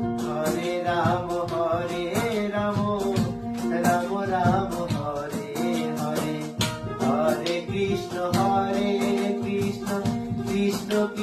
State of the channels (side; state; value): both; identical; correlation 1.00